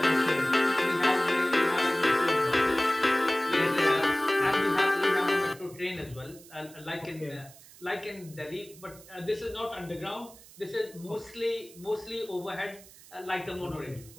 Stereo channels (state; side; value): noise; right; hiss, 21 dB below the sound